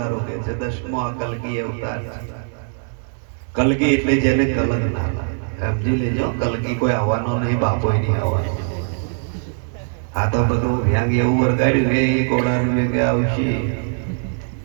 કે છે 10મો આ કલગી અવતાર છે કલગી એટલે જેને કલંક ના લાગે સમજી લેજો કલગી કોઈ આવવાનો નહીં બાપોય નહીં આવવાનો આ તો બધું વ્યાંગ એવું વરગાડ્યું કે એ ઘોડાનું વેગે આવશે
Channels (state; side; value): silent; left; 63 dB below the other